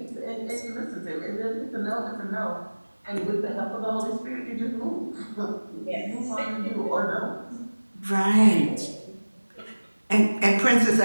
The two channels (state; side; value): inverted; both; correlation -1.00